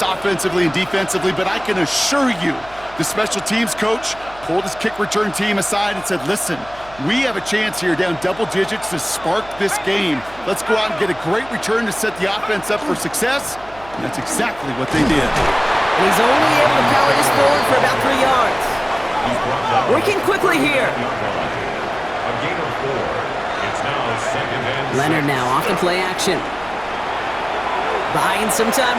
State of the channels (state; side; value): noise; right; hum, 21 dB below the sound